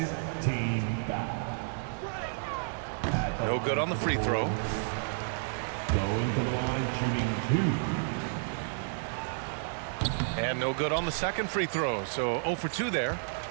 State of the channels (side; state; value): left; silent; digital silence